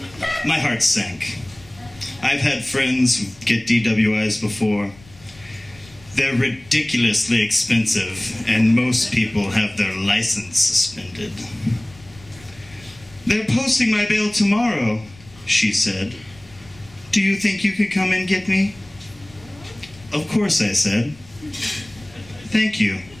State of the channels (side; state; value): left; noise; rumble, 24 dB below the sound